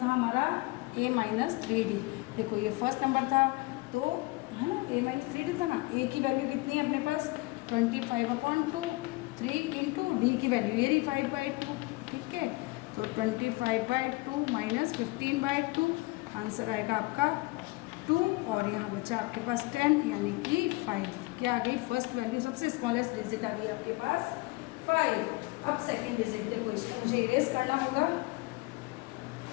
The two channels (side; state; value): right; quieter; 23.2 dB